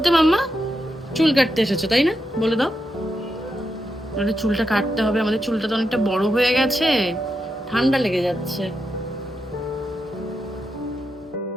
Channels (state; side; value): normal; both; correlation 0.85